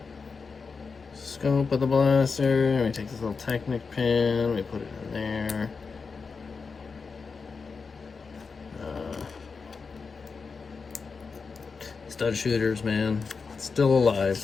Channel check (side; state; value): right; quieter; 4.9 dB